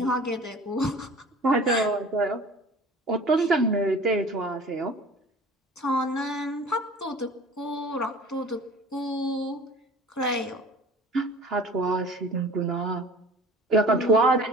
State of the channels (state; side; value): normal; both; correlation 0.43